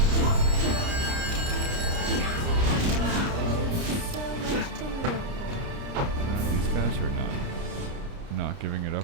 these guys are not giving it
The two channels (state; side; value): late; left; 29 ms